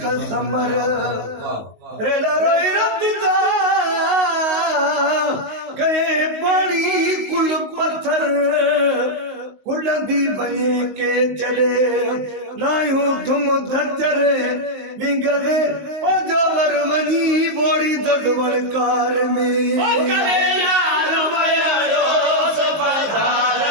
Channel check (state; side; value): late; left; 19 ms